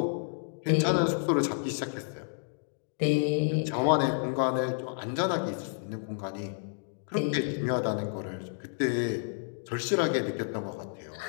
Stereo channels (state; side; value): silent; right; digital silence